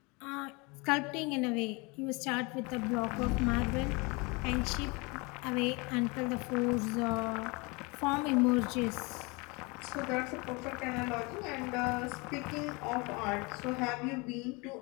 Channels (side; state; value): right; quieter; 28.0 dB